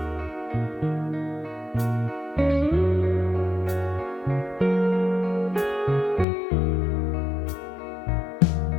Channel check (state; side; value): drops out; right; at 6.2 s